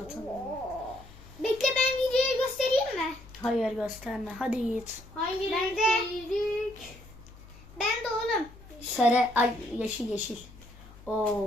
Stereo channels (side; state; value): left; noise; hum, 20 dB below the sound